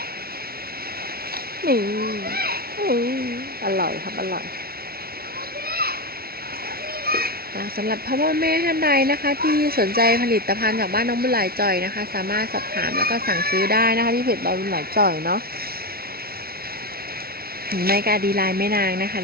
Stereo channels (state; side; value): late; left; 0.44 ms